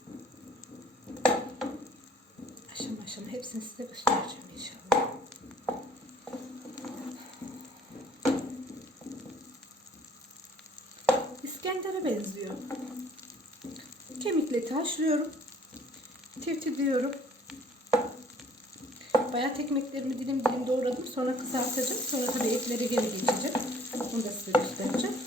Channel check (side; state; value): both; normal; correlation 0.56